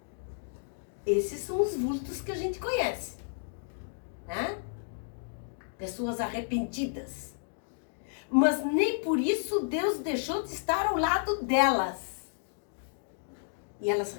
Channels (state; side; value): silent; right; digital silence